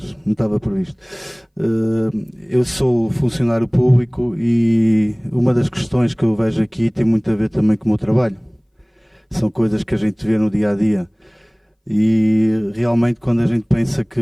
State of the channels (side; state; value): both; identical; correlation 1.00